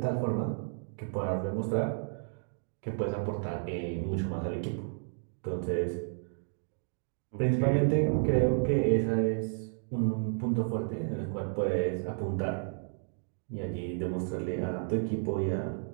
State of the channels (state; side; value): silent; left; digital silence